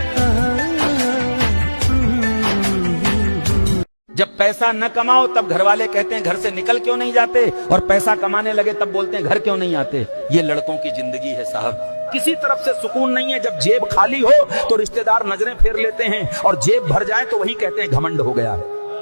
जब पैसा न कमाओ तब घर वाले कहते हैं घर से निकल क्यों नहीं जाते, और पैसा कमाने लगे तब बोलते हैं घर क्यों नहीं आते। ये लड़कों की जिंदगी है साहब। किसी तरफ से सुकून नहीं है। जब जेब खाली हो तो रिश्तेदार नजरें फेर लेते हैं, और जेब भर जाए तो वही कहते हैं घमंड हो गया है।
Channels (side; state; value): both; inverted; correlation -1.00